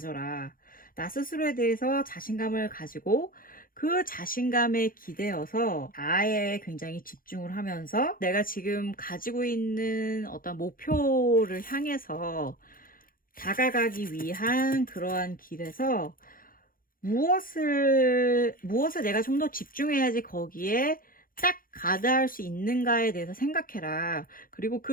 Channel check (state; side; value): late; right; 0.41 ms